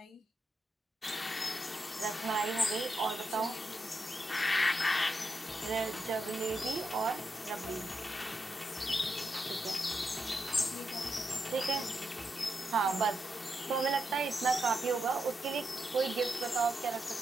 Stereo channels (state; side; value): normal; both; correlation 0.85